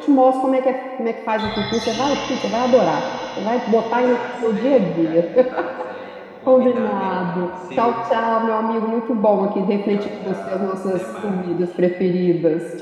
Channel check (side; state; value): both; identical; correlation 1.00